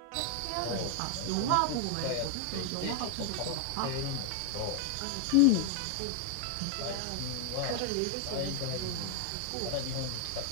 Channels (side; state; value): both; different; correlation 0.00